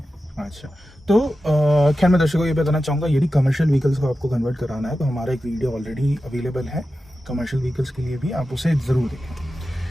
अच्छा, तो खैर मैं दर्शकों को ये बताना चाहूँगा, यदि कमर्शियल व्हीकल्स को आपको कन्वर्ट कराना है तो हमारा एक वीडियो ऑलरेडी अवेलेबल है कमर्शियल व्हीकल्स के लिए भी, आप उसे ज़रूर देखें।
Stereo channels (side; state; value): both; normal; correlation 0.92